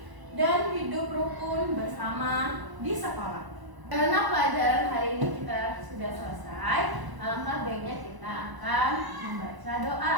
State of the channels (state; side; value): late; left; 1.0 ms